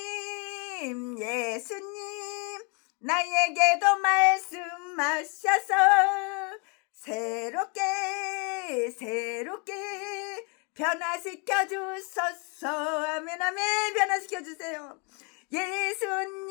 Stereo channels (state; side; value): quieter; right; 34.6 dB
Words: 나에게도 말씀하셔서 새롭게 변화시켜 주소서. 아멘. 변화시켜 주세요.